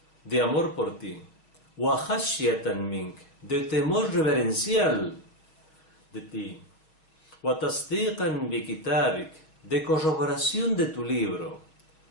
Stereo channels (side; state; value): right; late; 6.2 ms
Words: de amor por ti, wa khashyatan mink, de temor reverencial de ti, wa tasdiqan bi kitabik, de corroboración de tu libro,